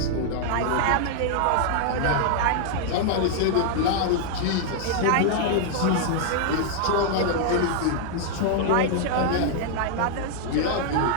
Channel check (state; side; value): different; both; correlation -0.01